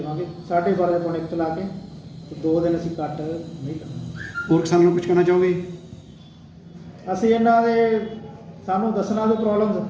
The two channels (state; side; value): identical; both; correlation 1.00